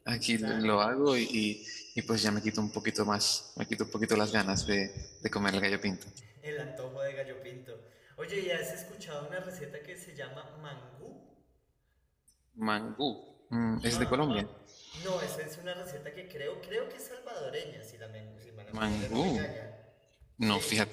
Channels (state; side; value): identical; both; correlation 1.00